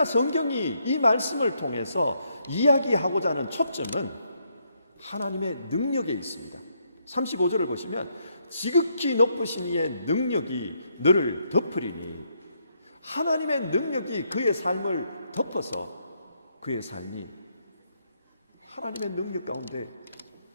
성경이 이 말씀을 통해서 이야기하고자 하는 초점은 하나님의 능력에 있습니다. 35절을 보시면 지극히 높으신 이의 능력이 너를 덮으리니, 하나님의 능력이 그의 삶을 덮어서 그의 삶이 하나님의 능력 가운데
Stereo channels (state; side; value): inverted; both; correlation -0.75